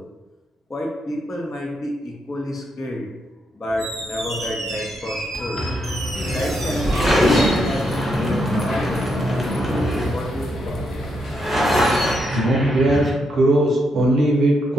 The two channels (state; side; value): normal; both; correlation 0.79